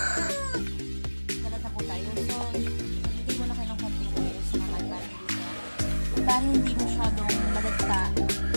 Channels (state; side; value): inverted; both; correlation -1.00